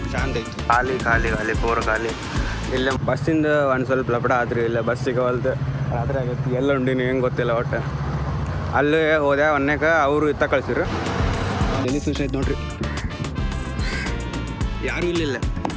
ಶಾಂತ ಐತಿ. ಖಾಲಿ ಖಾಲಿ ಖಾಲಿ ಪೂರ ಖಾಲಿ. ಇಲ್ಲೇ ಬಸ್ಸಿಂದ ಒಂದು ಸ್ವಲ್ಪ ಲಪಡ ಆತ್ರಿ, ಇಲ್ಲ ಬಸ್ ಸಿಗವಲ್ದು, ರಾತ್ರಿ ಆಗತ್ತೆ. ಎಲ್ಲ ಉಂಡಿನಿ ಹೆಂಗೆ ಗೊತ್ತಿಲ್ಲ ಒಟ್ಟು. ಅಲ್ಲೇ ಹೋದೆ ಒನ್ನೇಕ ಅವರು ಇತ್ತ ಕಳ್ಸಿರು. ಎಲ್ಲಿ ಫಿಶ್ ಐತೆ ನೋಡ್ರಿ, ಯಾರೂ ಇಲ್ಲಿಲ್ಲ.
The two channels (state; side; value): identical; both; correlation 1.00